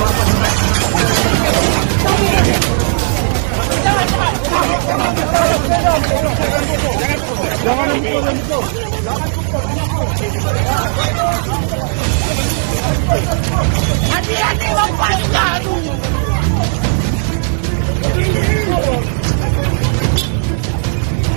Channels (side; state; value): left; silent; digital silence